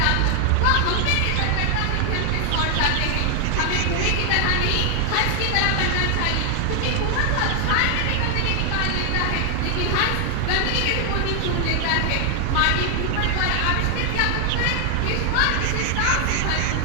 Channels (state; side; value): different; both; correlation 0.00